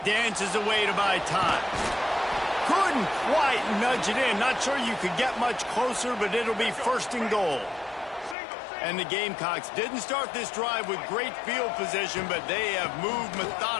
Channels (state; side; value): drops out; right; at 8.3 s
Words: Dances away to buy time. Couldn't quite nudge it in. Not sure you could get much closer, but it'll be first and goal. And the Gamecocks didn't start this drive with great field position, but they have moved